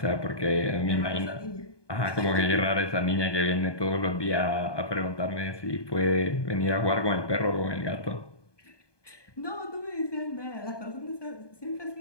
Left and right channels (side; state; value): right; late; 1.2 ms